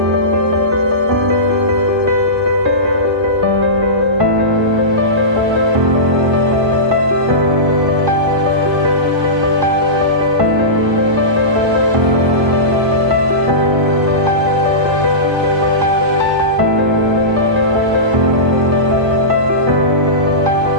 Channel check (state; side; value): late; left; 1.2 ms